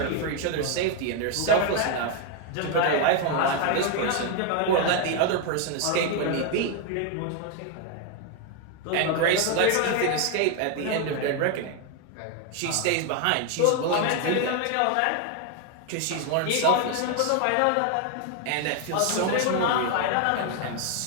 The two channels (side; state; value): both; different; correlation 0.01